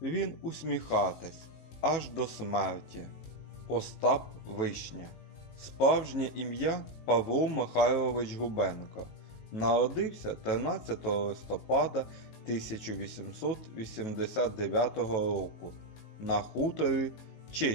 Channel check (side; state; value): right; late; 18 ms